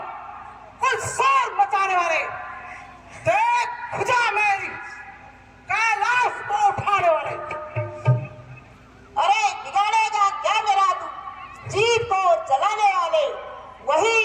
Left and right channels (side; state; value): both; identical; correlation 1.00